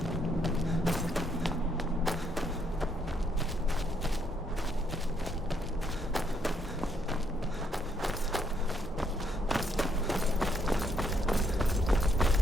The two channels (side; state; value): both; normal; correlation 0.73